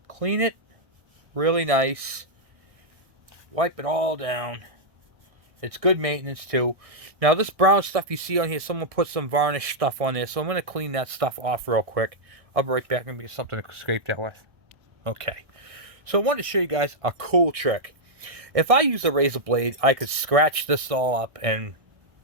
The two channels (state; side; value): late; left; 1.6 ms